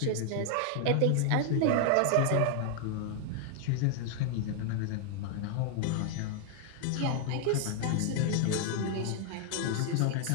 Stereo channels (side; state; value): both; different; correlation 0.00